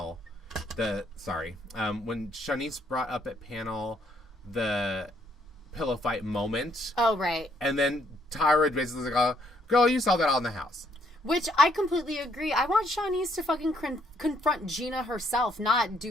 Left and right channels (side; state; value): both; normal; correlation 0.70